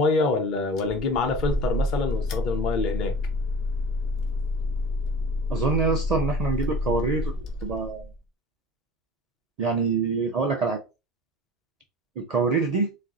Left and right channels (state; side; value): normal; both; correlation 0.39